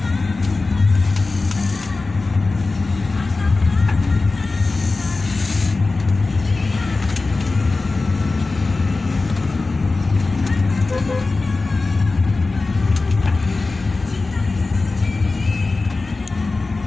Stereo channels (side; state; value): right; quieter; 3.6 dB